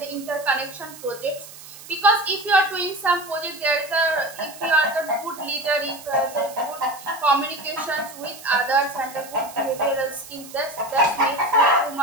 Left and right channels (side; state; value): right; noise; hiss, 17 dB below the sound